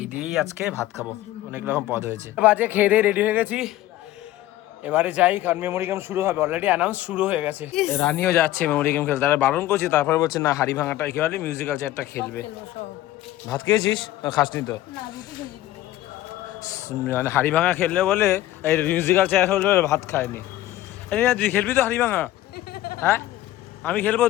দিয়েই আজকে ভাত খাবো, অনেক রকম পদ হয়েছে। বাজে খেয়ে দিয়ে রেডি হয়ে গেছি, এবারে যাই, কারণ মেমোরি গেম শুরু হবে, অলরেডি অ্যানাউন্স শুরু হয়ে গেছে। রানিও যাচ্ছে মেমোরি গেম খেলতে, তারা বারণ করছি, তারপরে বলছে না, হাড়ি ভাঙাটা কি বলে, মিউজিক্যাল চেয়ারটা খেলবে। ভাত খেয়েছিস? খাসনি তো? মানে হাড়ি ভাঙা খেললে বলে, এই মিউজিক্যাল চেয়ার খেললে বলে ভাত খায়নি। তুই খেলবি তো হাড়ি ভাঙা? হ্যাঁ, আমি খেলবো,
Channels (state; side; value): quieter; right; 15.0 dB